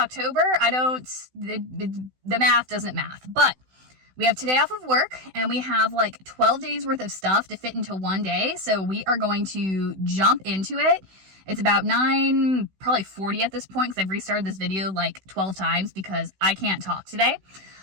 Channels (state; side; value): late; left; 16 ms